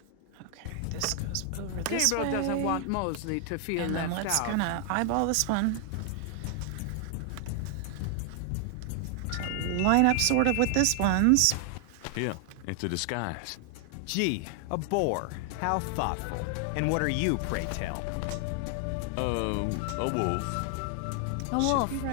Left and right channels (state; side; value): different; both; correlation 0.00